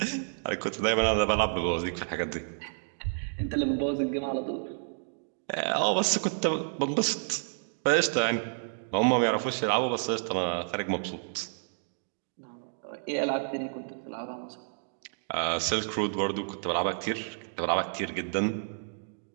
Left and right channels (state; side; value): silent; left; digital silence